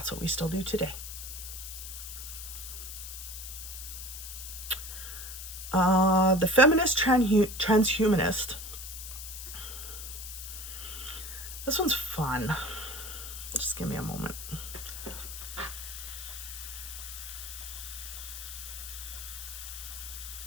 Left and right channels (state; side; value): noise; left; hiss, 9 dB below the sound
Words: what we still do today. The feminist transhumanist. This one's fun. Just give me a moment.